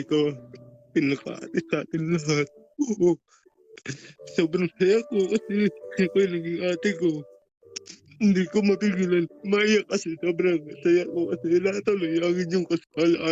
ikaw pinaka-ate sa atin lahat. Oo, sobrang saya ko kasi ikaw yung naging ate ko. Hindi ko mapigilan. Maiyak kasi sobrang saya ko kasi natuloy ang inyong kasal,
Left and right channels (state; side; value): identical; both; correlation 1.00